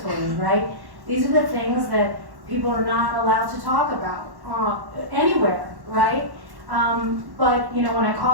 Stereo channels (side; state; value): left; late; 1.1 ms